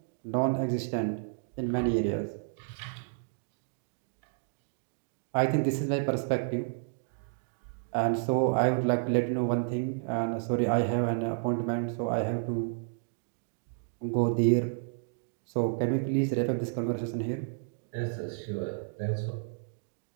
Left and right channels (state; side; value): silent; left; digital silence